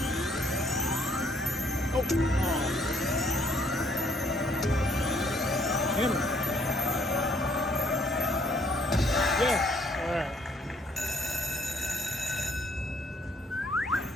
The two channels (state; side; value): normal; both; correlation 0.65